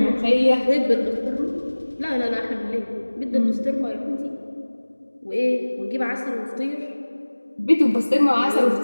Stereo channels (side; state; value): both; inverted; correlation -1.00